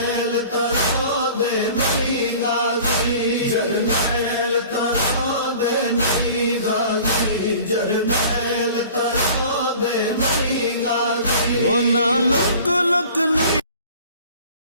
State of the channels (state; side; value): inverted; both; correlation -0.45